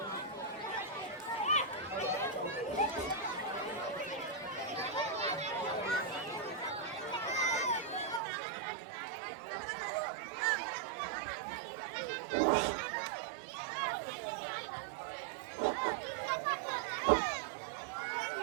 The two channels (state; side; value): drops out; left; at 8.2 s